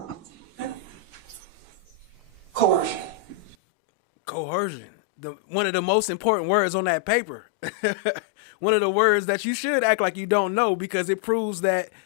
Coercion. Coercion. One of the most important words on that paper. One of the words that you should act like you don't know, because it proves that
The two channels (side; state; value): right; drops out; at 3.6 s